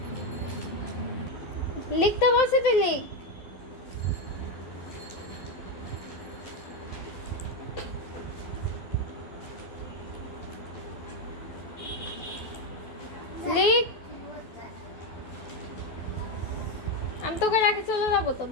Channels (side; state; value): right; late; 12 ms